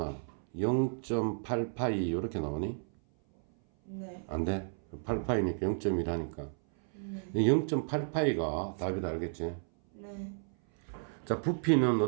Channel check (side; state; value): left; silent; 56 dB below the other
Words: 0.8파이 요렇게 나오니? 네. 안 돼? 8파이니까 0.1 하니까. 네. 0.8파이가 답이다. 알겠지? 네. 자, 부피는